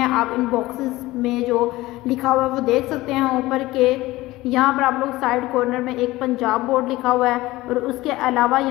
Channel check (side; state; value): right; quieter; 18.5 dB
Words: आप इन बॉक्सेस में जो लिखा हुआ है वो देख सकते हैं ऊपर के, यहाँ पर आप लोग साइड कॉर्नर में एक पंजाब बोर्ड लिखा हुआ है और उसके अलावा